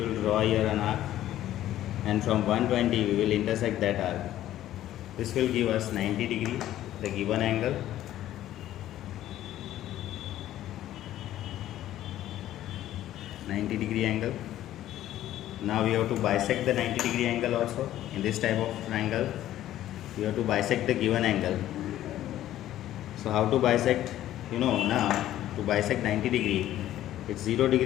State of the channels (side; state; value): right; quieter; 13.1 dB